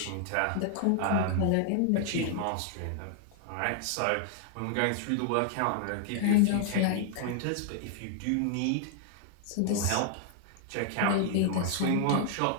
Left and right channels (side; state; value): both; different; correlation 0.00